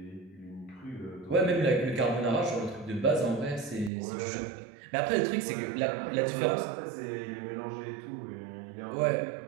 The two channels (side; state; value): left; drops out; at 3.9 s